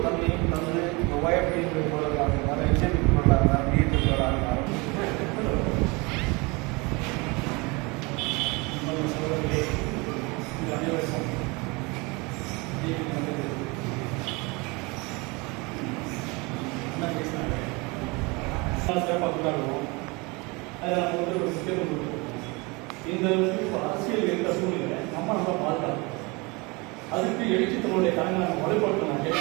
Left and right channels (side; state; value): left; quieter; 26.8 dB